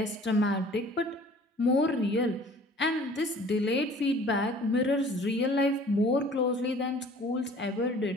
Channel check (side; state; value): both; normal; correlation 0.50